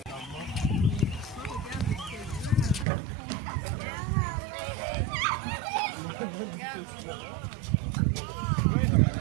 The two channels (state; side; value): drops out; left; at 2.9 s